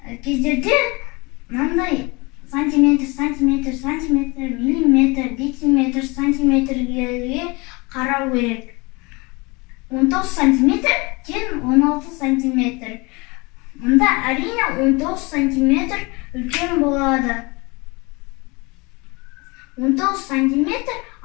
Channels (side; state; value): right; quieter; 26.5 dB